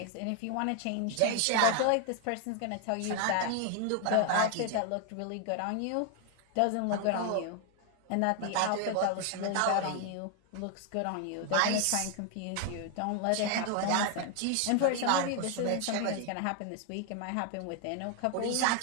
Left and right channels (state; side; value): different; both; correlation 0.00